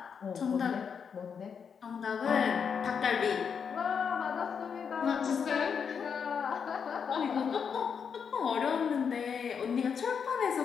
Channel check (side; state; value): right; quieter; 6.7 dB